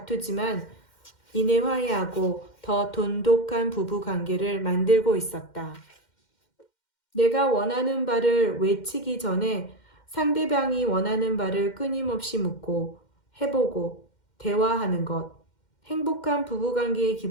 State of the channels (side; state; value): right; late; 2.1 ms